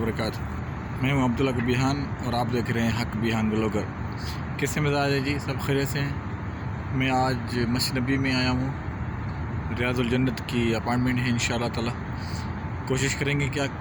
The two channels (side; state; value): both; identical; correlation 1.00